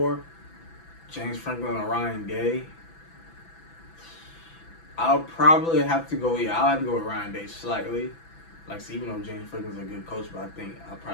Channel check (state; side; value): late; right; 6.0 ms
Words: James Franklin or Ryan Day? I'll probably have to go. Yeah, I'll have to go with Ryan Day slightly. Like, so even though James Franklin's a good coach, but I think I'll